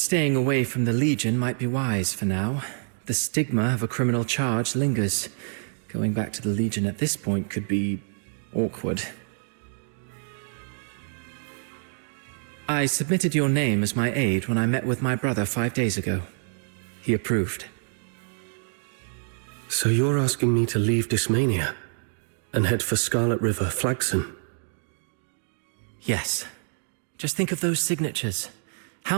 away from the Legion might be wise for now. The stigma of a criminal charge lingers. Going back to the Legion at this point could be awkward. I submitted your name as my aide when I met with my brother 5 days ago. He approved. So you're asking me to leave Dysmania and head for Scarlet River, Flagson? Yes. Just think of those signatures.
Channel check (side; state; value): left; silent; digital silence